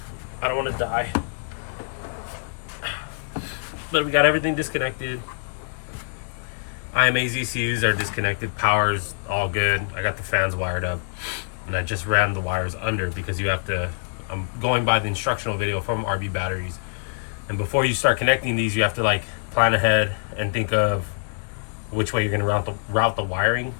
I don't want to die. But we got everything disconnected. IMA's ECUs are disconnected. Power's all good. I got the fans wired up. And I just ran the wires under because you have to. I'm going by the instructional video from RBbatteries. And before you start connecting these, you have to like plan ahead and think of which way you're going to route the wiring.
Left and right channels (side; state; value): right; silent; digital silence